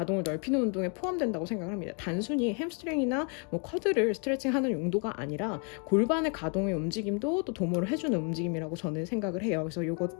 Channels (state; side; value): quieter; right; 38.4 dB